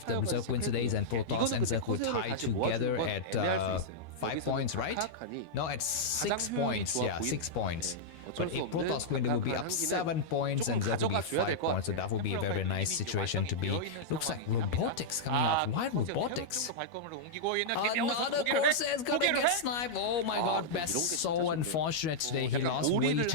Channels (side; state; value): right; late; 13 ms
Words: the Zerg wins today, then Protoss and Zerg will tie together at 5 points, right? No, at 6 points. Yeah, 6 points. But if Protoss win, they will be up 7 points and Zerg will be 5 points. So that will be a very, very nice situation to be. Looks like robotics coming out. Why robotics? Another Corsair is gonna get sniped. Oh my god, Best so unfortunate today. He lost way